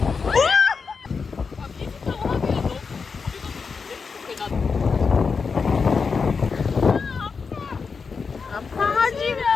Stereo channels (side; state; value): right; quieter; 5.2 dB